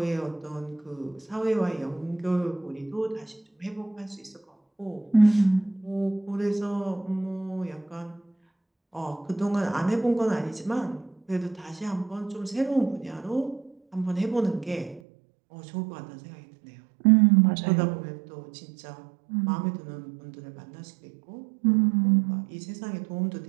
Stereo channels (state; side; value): drops out; left; at 15.0 s